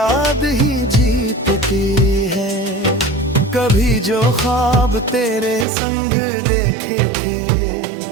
ही जीतती है। कभी जो ख्वाब तेरे संग देखे थे,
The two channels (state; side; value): drops out; left; at 5.7 s